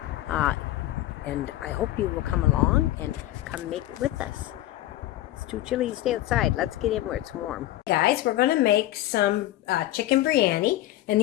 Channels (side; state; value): right; quieter; 14.9 dB